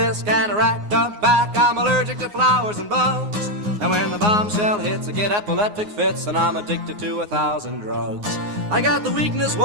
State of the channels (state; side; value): late; left; 9.6 ms